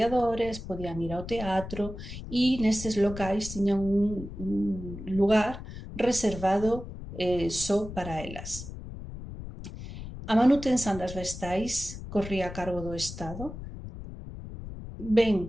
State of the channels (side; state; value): left; noise; rumble, 11 dB below the sound